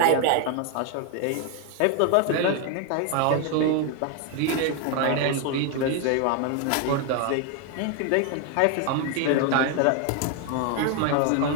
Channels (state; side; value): different; both; correlation 0.01